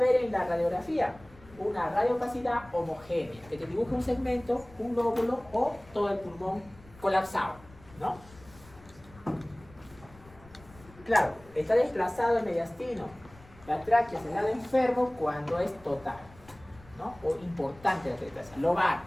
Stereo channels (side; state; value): left; noise; rumble, 23 dB below the sound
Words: en la radiografía? Una radiopacidad homogénea, que te dibuja un segmento, un lóbulo o todo el pulmón colapsado, ¿no? Claro, está desplazado el mediastino, la tráquea es el lado enfermo cuando es total, ¿no? O importante la atelectasia, lobar.